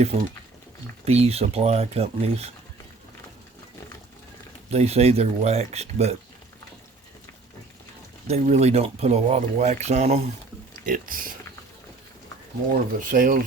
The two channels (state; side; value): quieter; left; 3.7 dB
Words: bee supply companies, they say they're waxed, but they really don't put a lot of wax on them. It's more of a